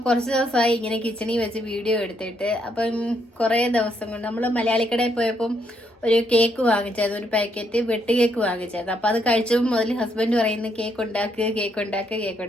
കുറച്ച് ദിവസമായി ഇങ്ങനെ കിച്ചണിൽ വെച്ച് വീഡിയോ എടുത്തിട്ട് അപ്പം കുറേ ദിവസം കൊണ്ട് നമ്മൾ മലയാളിക്കടയിൽ പോയപ്പം ഒരു കേക്ക് വാങ്ങിച്ചായിരുന്നു, ഒരു പാക്കറ്റ് വെട്ട് കേക്ക് വാങ്ങിച്ചായിരുന്നു. അപ്പം അത് കഴിച്ചപ്പോൾ മുതൽ ഹസ്ബൻഡ് പറയുന്നു കേക്ക്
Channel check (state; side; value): normal; both; correlation 0.74